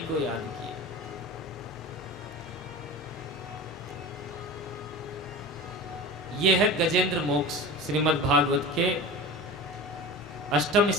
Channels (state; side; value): normal; both; correlation 0.32